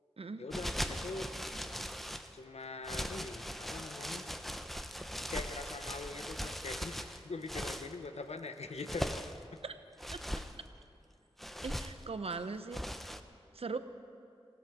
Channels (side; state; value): both; normal; correlation 0.75